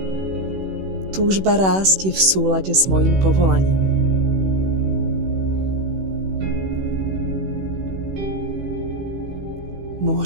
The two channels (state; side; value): late; left; 16 ms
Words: Túžba rásť je v súlade s mojím povolaním.